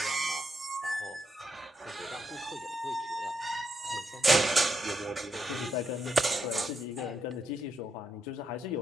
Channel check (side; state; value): both; normal; correlation 0.79